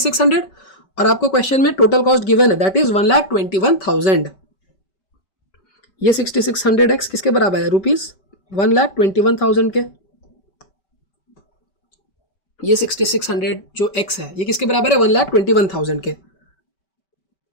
और आपको क्वेश्चन में टोटल कॉस्ट गिवन है दैट इज 1,21,000. ये 6600x किसके बराबर है? रुपीज 1,21,000 के. ये 6600 जो x है ये किसके बराबर है? 1,21,000 के.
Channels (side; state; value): right; late; 5.2 ms